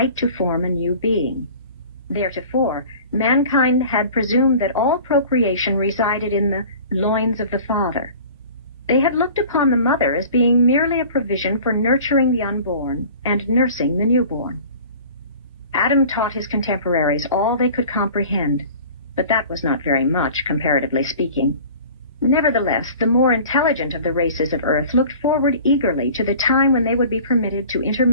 to form a new being. Theretofore, mankind had presumed that all procreation resided in the loins of the father. They had looked upon the mother as being merely a provision for nurturing the unborn and nursing the newborn. Adam taught his contemporaries all they could comprehend, but that was not very much, comparatively speaking. Nevertheless, the more intelligent of the races of Earth looked forward eagerly to the time when they would be permitted to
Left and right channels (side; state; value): both; inverted; correlation -0.43